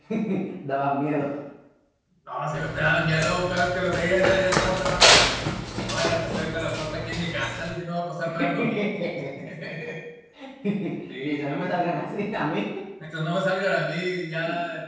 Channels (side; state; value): both; identical; correlation 1.00